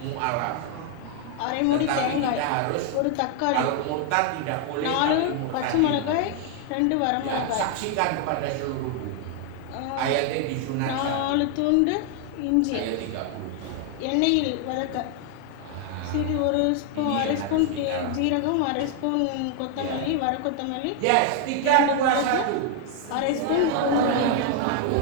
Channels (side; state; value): both; different; correlation 0.00